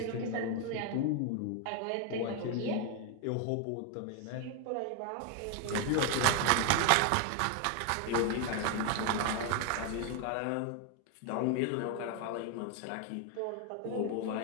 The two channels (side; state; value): both; different; correlation 0.01